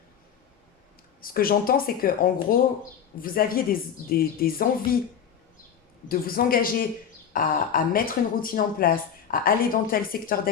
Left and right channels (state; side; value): quieter; right; 8.0 dB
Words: Ce que j'entends, c'est que en gros, vous aviez des envies de vous engager à mettre une routine en place, à aller dans tel secteur